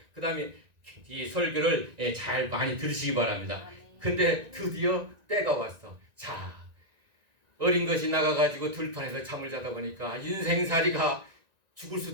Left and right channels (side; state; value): left; late; 1.9 ms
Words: 그 다음에 이 설교를 잘 많이 들으시기 바랍니다. 근데 드디어 때가 왔어. 자, 어린 것이 나가가지고 들판에서 잠을 자다 보니까 인생살이가 죽을